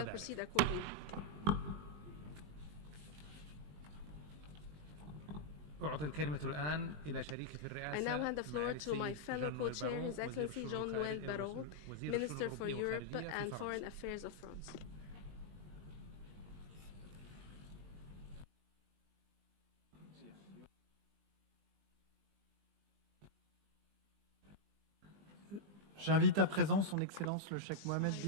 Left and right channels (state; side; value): late; left; 20 ms